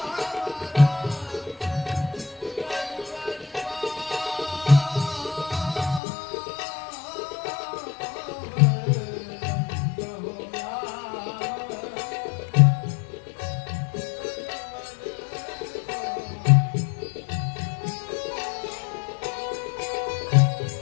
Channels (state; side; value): drops out; right; at 6.0 s